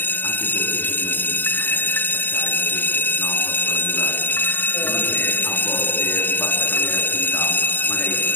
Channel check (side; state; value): right; late; 0.091 ms